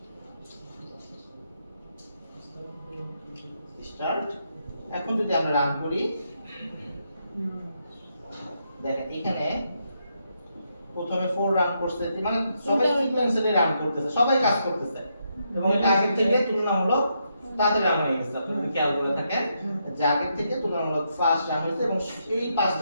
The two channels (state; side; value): inverted; both; correlation -0.80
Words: এখন যদি আমরা রান করি দেখেন এখানে প্রথমে 4 রান করছে, মানে সবাই সিকোয়েন্সিয়ালি রান করতেছে, সবাই কাজ করতেছে এবং এটা আগের থেকে তুলনামূলক তাড়াতাড়ি রান হয়ে গেছে। আপনি যদি খেয়াল করে থাকেন যে আগের থেকে তুলনামূলক ফাস্ট রান হয়েছে এবং এই